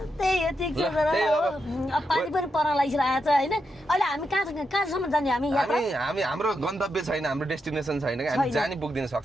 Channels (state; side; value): normal; both; correlation 0.85